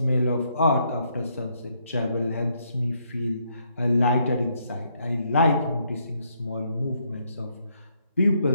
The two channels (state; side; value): inverted; both; correlation -0.73